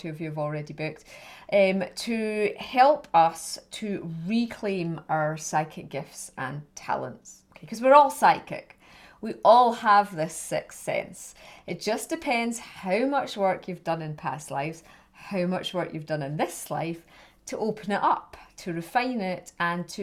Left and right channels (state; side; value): identical; both; correlation 1.00